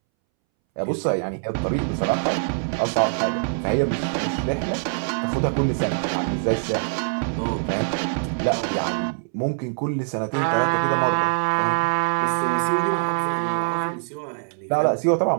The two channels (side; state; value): left; silent; 63 dB below the other